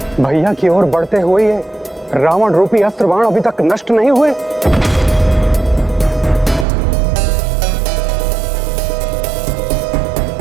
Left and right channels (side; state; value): left; drops out; at 6.7 s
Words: भैया की ओर बढ़ते हुए ये रावण रूपी अस्त्र बाण अभी तक नष्ट नहीं हुए।